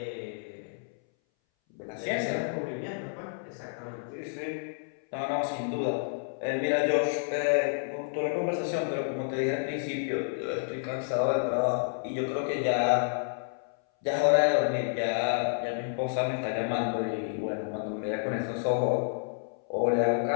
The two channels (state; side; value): silent; right; 58 dB below the other